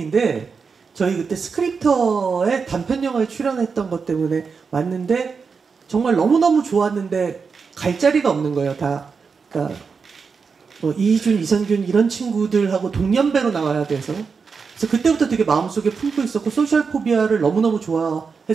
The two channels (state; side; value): quieter; left; 5.4 dB